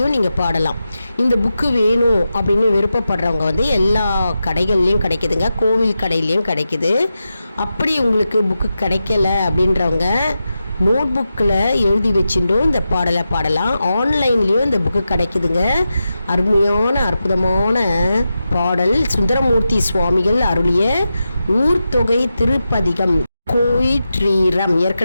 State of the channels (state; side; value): inverted; both; correlation -0.90